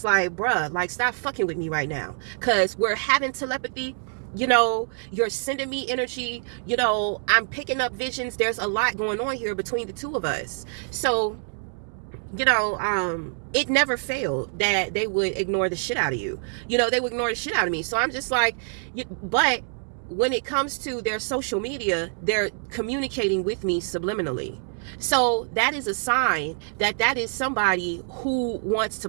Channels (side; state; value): left; silent; 61 dB below the other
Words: like, bruh, like, stop fucking with me right now, because we're having telepathy. You know, you're sending me energy, you know, I'm picking up visions. There's a lot going on here between the two of us. So, you know, it never failed that they would ignore the shit out of you. You know, they would ignore the shit out of me. So I'm just like, but when it comes to their social media, they're communicating with me subliminally. So that is a sign that that is somebody who wants